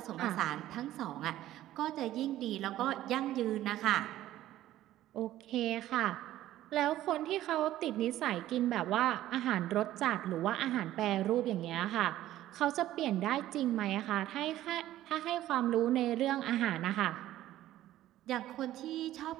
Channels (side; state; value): left; quieter; 13.9 dB